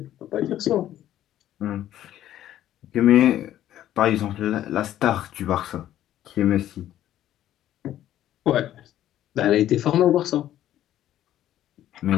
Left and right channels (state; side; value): quieter; right; 12.4 dB